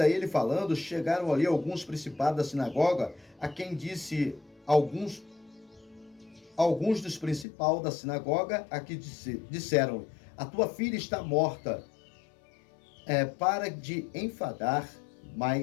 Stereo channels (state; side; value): drops out; right; at 7.5 s